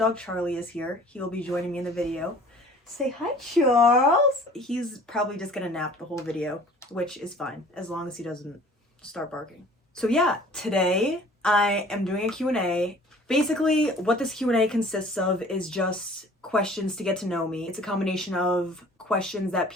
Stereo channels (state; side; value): normal; both; correlation 0.49